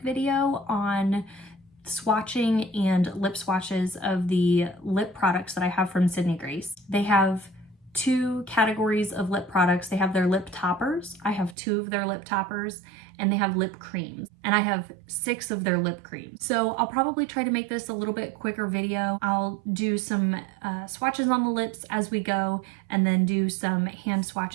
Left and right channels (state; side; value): drops out; left; at 11.6 s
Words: video on swatching and lip swatches of the lip products that I have from Sydney Grace. They have two categories of lip products. They have their lip toppers. I have two of their lip toppers, and they have lip creams, and I have 6 of their lip creams. So I'll probably try to make this a little bit quicker video. I'll do some swatches on the lips as we go, and then do some hand